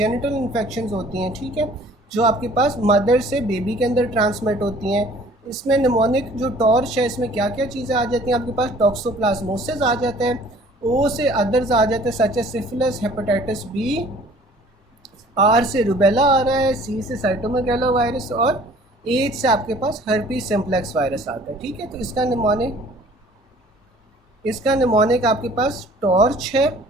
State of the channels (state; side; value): normal; both; correlation 0.52